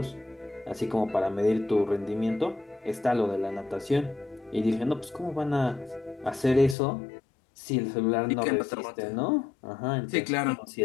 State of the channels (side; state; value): right; drops out; at 6.8 s